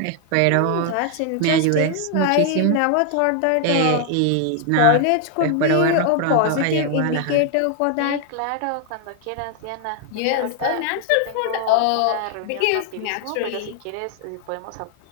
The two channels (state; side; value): different; both; correlation 0.00